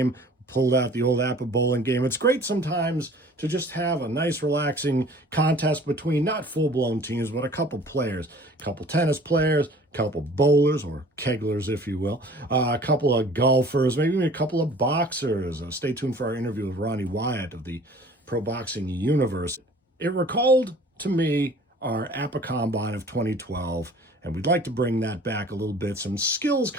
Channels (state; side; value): normal; both; correlation 0.49